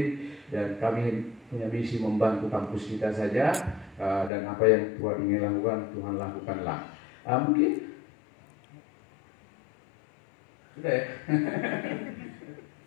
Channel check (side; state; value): right; drops out; at 4.3 s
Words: dan kami punya misi membantu kampus kita saja, dan apa yang Tuhan ingin lakukan, Tuhan lakukanlah. Mungkin sudah ya.